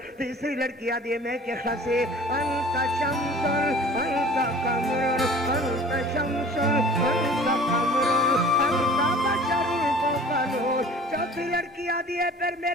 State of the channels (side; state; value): both; normal; correlation 0.46